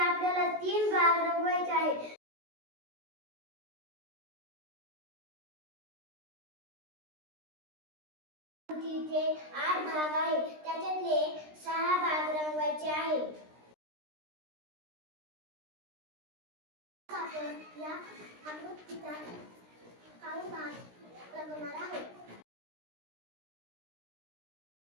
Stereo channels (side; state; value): left; late; 16 ms